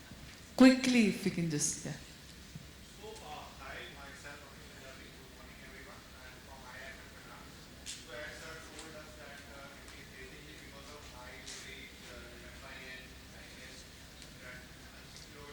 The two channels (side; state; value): both; identical; correlation 1.00